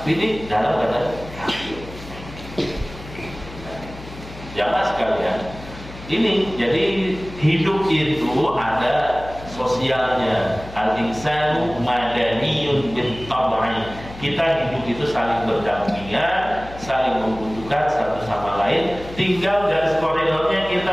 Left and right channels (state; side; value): noise; left; hum, 15 dB below the sound